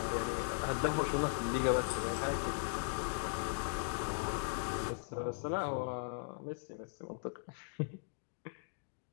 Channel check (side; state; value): right; silent; digital silence